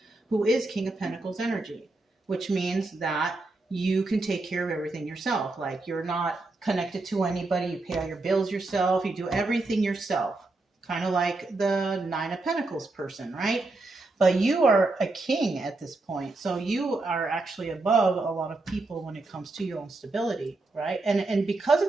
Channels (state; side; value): quieter; left; 3.2 dB